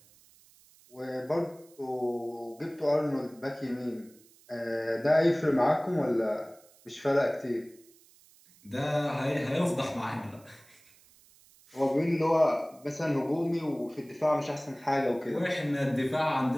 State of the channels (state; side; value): noise; right; hiss, 28 dB below the sound